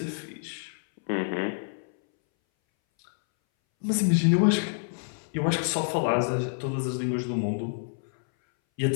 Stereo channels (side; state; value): right; silent; 60 dB below the other